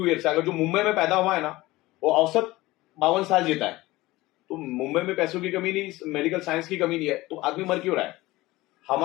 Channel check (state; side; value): quieter; right; 19.1 dB